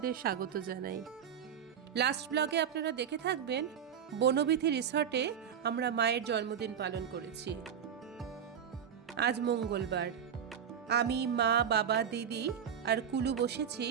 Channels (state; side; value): quieter; left; 8.3 dB